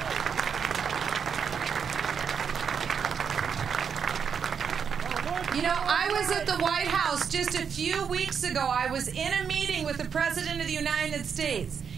You know, I was at the White House just a few weeks ago. I was in a meeting with the President of the United States.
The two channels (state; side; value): quieter; left; 6.9 dB